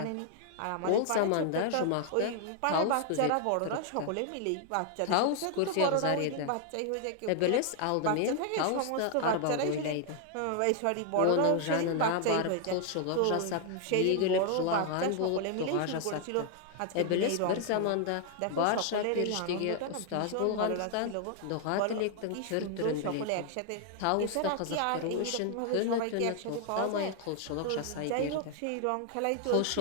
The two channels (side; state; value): both; different; correlation 0.00